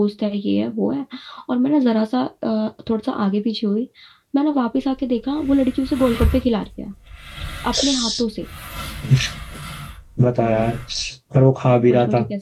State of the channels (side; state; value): both; identical; correlation 1.00